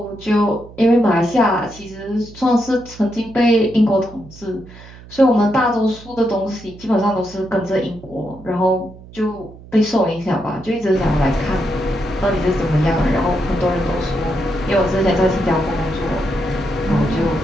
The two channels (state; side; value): noise; right; hum, 19 dB below the sound